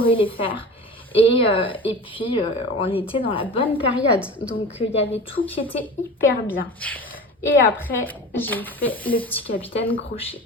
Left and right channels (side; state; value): both; normal; correlation 0.34